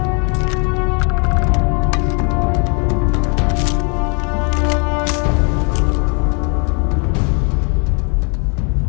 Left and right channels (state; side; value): quieter; right; 36.2 dB